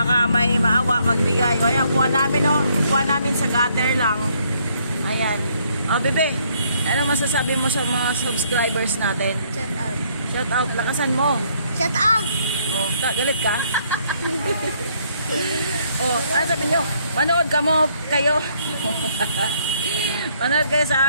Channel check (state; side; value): inverted; both; correlation -0.68